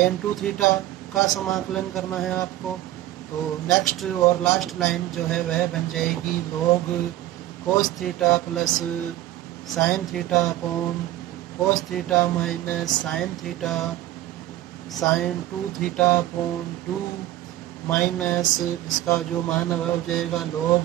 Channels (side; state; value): left; quieter; 14.9 dB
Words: 2 theta का समाकलन करना है आपको। तो नेक्स्ट और लास्ट लाइन जो है वह बन जाएगी log कोस theta plus sine theta upon cos theta minus sine theta sine 2 theta upon 2 minus इसका जो मान है वह हो जाएगा